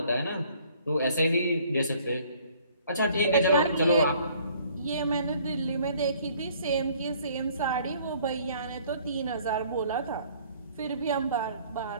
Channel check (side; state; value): both; inverted; correlation -0.58